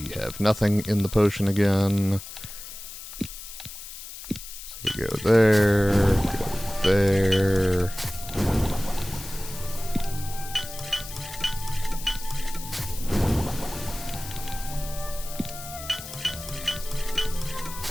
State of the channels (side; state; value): left; noise; hiss, 12 dB below the sound